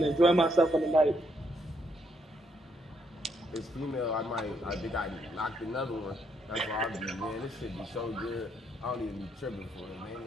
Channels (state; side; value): normal; both; correlation 0.75